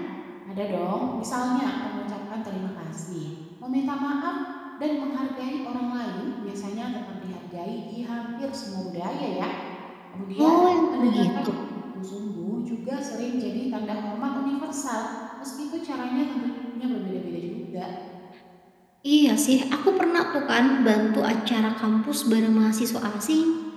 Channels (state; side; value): identical; both; correlation 1.00